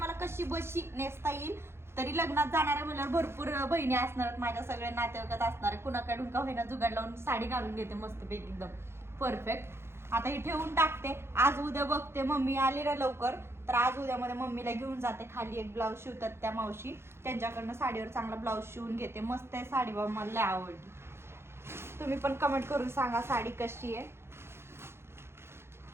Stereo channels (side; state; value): left; late; 0.12 ms